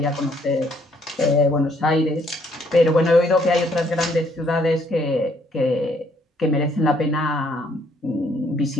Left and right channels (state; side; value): normal; both; correlation 0.67